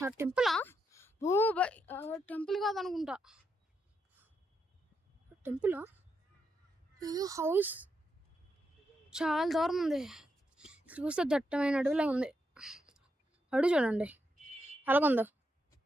టెంపులా? ఓ బై, టెంపుల్ కాదనుకుంటా. టెంపులా? ఏదో హౌస్ చాలా దూరం ఉంది. చూస్తే దట్టమైన అడవిలా ఉంది. అడుగు చూడండి అలాగుందో.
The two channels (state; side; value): normal; both; correlation 0.82